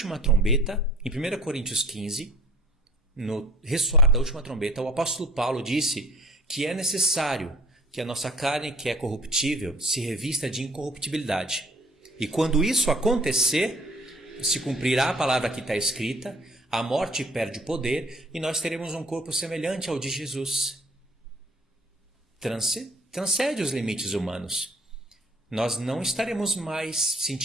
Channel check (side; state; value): both; normal; correlation 0.53